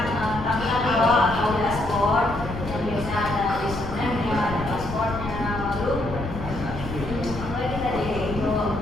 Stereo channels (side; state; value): left; noise; rumble, 9 dB below the sound